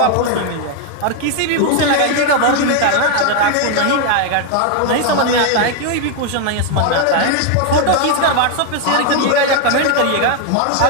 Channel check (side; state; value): both; different; correlation 0.01